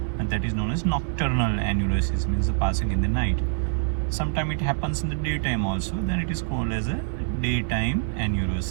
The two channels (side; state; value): left; silent; digital silence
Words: and that is known as nocturnal enuresis, means the passing in the night. Sometimes it happens in the daytime also, then it is called as a daytime